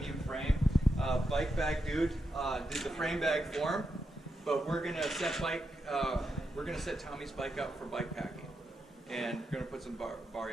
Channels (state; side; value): normal; both; correlation 0.85